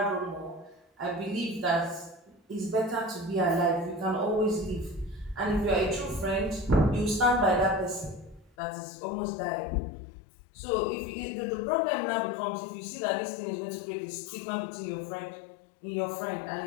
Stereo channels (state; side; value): drops out; right; at 8.5 s